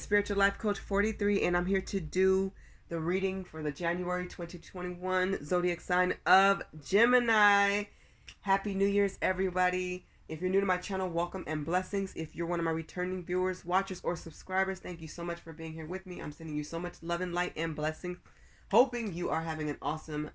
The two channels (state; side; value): identical; both; correlation 1.00